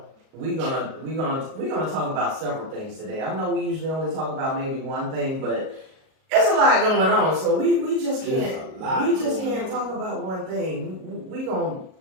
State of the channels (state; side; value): late; left; 38 ms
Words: we're gonna talk about several things today. I know we usually only talk about maybe one thing, but it's a lot going on, so we just can't talk about one thing. We gonna